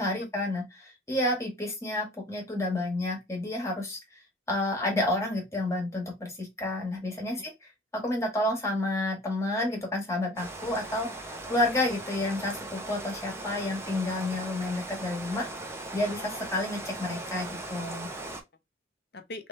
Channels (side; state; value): both; normal; correlation 0.46